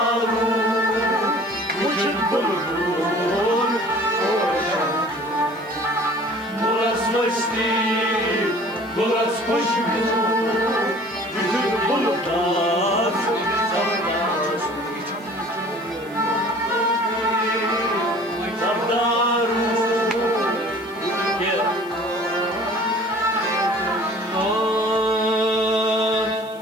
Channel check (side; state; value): right; noise; hiss, 27 dB below the sound